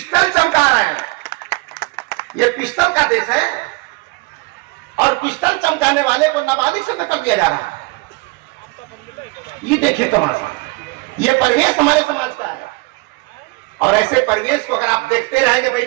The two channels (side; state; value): left; quieter; 25.5 dB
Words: चमका रहे हैं। ये पिस्टल का देश है, और पिस्टल चमकाने वाले को नाबालिग से कर दिया जा रहा है। ये देखिए तमाशा। ये परिवेश हमारे समाज का है, और ऐसे परिवेश को अगर आप देखते रहेंगे